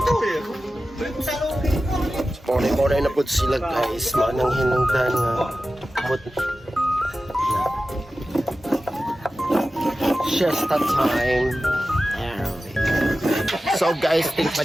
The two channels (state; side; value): normal; both; correlation 0.94